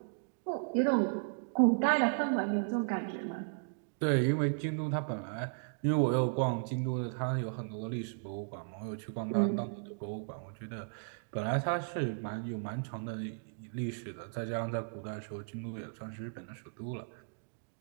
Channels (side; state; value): left; silent; digital silence